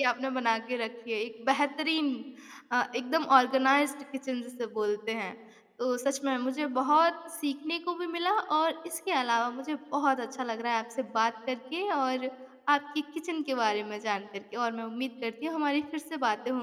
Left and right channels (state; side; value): identical; both; correlation 1.00